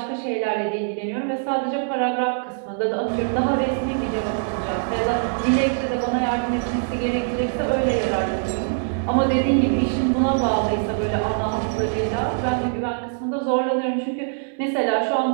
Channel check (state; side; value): silent; left; digital silence